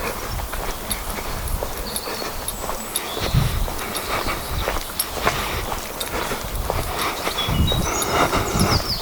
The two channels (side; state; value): both; identical; correlation 1.00